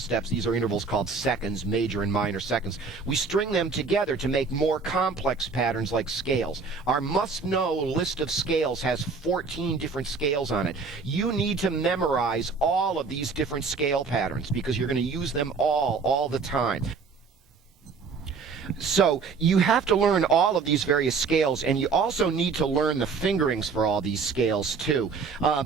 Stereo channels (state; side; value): quieter; left; 4.9 dB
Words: These are intervals called seconds, major and minor seconds. We string them together to make more complex patterns like scales. Our must-know list of scales has 14 different scales on it. You need to memorize all of these different scale patterns because you're going to use them all the time. So you have to learn all of these various scales, and you also need to learn the fingerings for all these scales too.